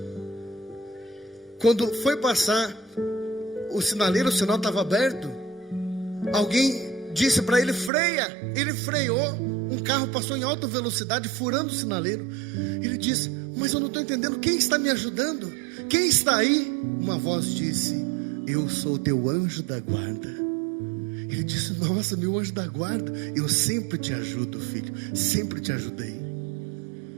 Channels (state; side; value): drops out; left; at 7.9 s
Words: Quando foi passar o sinaleiro, o sinal estava aberto. Alguém disse para ele: freia. Ele freou. Um carro passou em alta velocidade, furando o sinaleiro. Ele disse: mas eu não estou entendendo, quem está me ajudando? Quem está aí? Uma voz disse: eu sou teu anjo da guarda. Ele disse: nossa, meu anjo da guarda, eu sempre te ajudo, filho, sempre te ajudei.